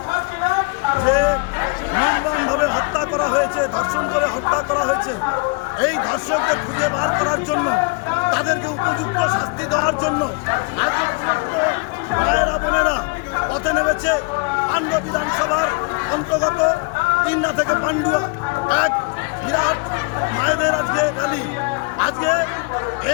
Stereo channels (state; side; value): quieter; right; 30.9 dB